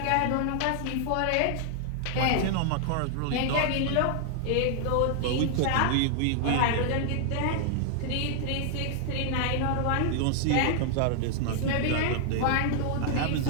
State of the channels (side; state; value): both; different; correlation 0.00